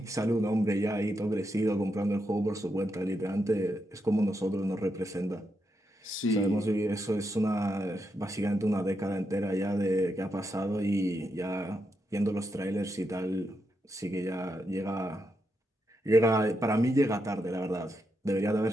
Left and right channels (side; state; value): both; normal; correlation 0.83